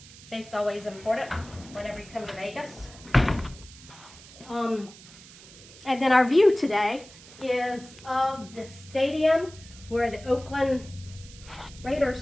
Safe's always important whenever you come to Vegas. And then our view today is of the stadium where the Oakland Raiders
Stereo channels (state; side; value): noise; right; hiss, 19 dB below the sound